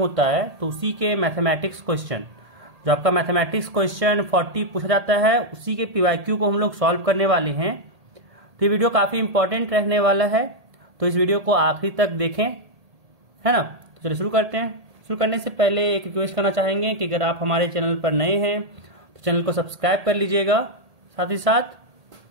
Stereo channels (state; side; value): late; left; 1.8 ms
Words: है तो उसी के मैथमेटिक्स क्वेश्चन, जो आपका मैथमेटिक्स क्वेश्चन 40 पूछा जाता है उसी के पीवाईक्यू को हम लोग सॉल्व करने वाले हैं। तो ये वीडियो काफी इंपॉर्टेंट रहने वाला है, तो इस वीडियो को आखिरी तक देखें, है ना। तो चलिए शुरू करते हैं। शुरू करने से पहले एक रिक्वेस्ट करना चाहेंगे कि अगर आप हमारे चैनल पर नए हैं तो चैनल को सब्सक्राइब कर लीजिएगा, साथ ही साथ